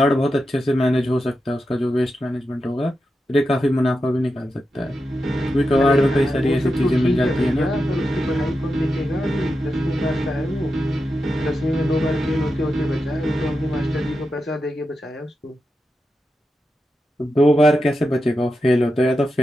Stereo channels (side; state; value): both; normal; correlation 0.89